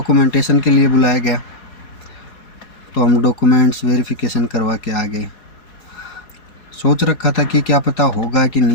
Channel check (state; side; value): late; right; 4.8 ms